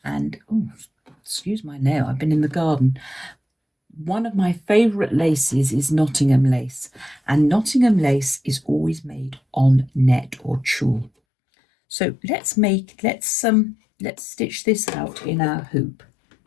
And, oh, excuse my nail, I've been in the garden. One of my favourite laces is Nottingham lace, and Nottingham lace is always made on net or tulle. So let's stitch this out in our hoop.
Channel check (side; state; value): right; drops out; at 11.1 s